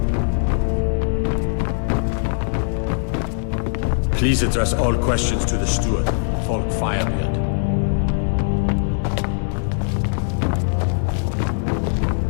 Please address all questions to the steward, Falk Firebeard.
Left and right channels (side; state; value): right; silent; digital silence